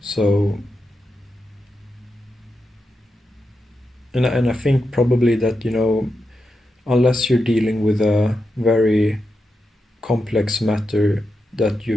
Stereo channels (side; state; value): both; normal; correlation 0.88